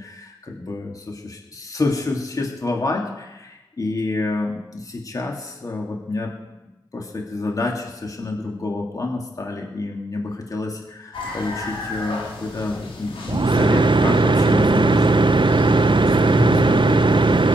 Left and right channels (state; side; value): normal; both; correlation 0.77